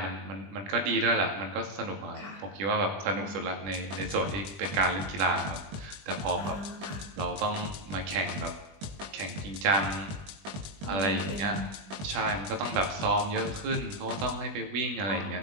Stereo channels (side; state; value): left; late; 20 ms